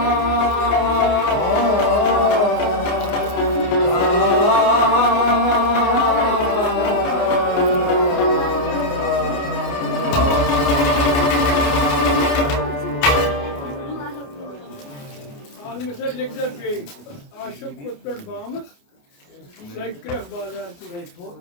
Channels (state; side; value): late; right; 29 ms